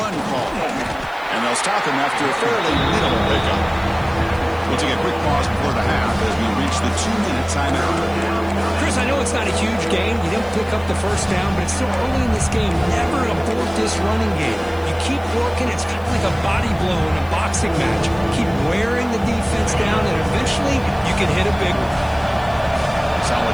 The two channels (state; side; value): noise; left; hiss, 27 dB below the sound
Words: call, and they'll stop him after a fairly minimal pickup. We'll take a quick pause before the half as we reach the 2-minute timeout. Chris, I know it's not a huge game. You didn't pick up the first down, but it's still early in this game. Never abort this running game. You keep working. It's kind of like a body blow in a boxing match. Keep wearing the defense down, and eventually you can hit a big one.